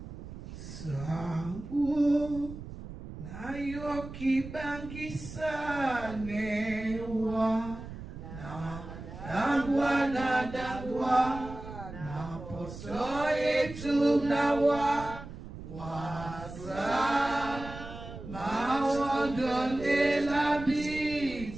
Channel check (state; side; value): noise; right; rumble, 12 dB below the sound